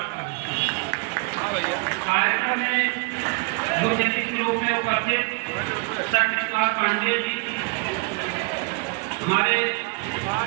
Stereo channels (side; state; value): left; quieter; 31.9 dB